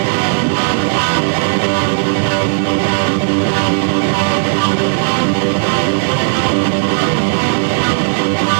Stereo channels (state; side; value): silent; left; digital silence